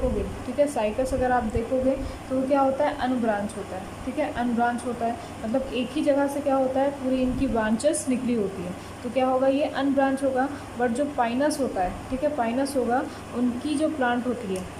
ठीक है, साइकस अगर आप देखोगे तो वो क्या होता है, अनब्रांच होता है। ठीक है, अनब्रांच होता है मतलब एक ही जगह से क्या होता है, पूरी इनकी ब्रांचेस निकली होती है, तो क्या होगा, ये अनब्रांच होगा। बट जो पाइनस होता है, ठीक है, पाइनस होगा, उनकी जो प्लांट होती है,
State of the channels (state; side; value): identical; both; correlation 1.00